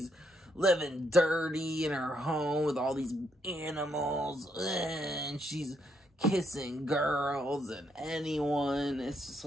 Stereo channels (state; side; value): normal; both; correlation 0.75